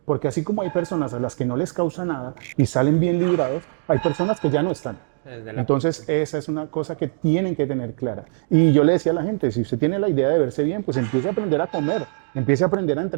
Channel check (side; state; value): left; silent; digital silence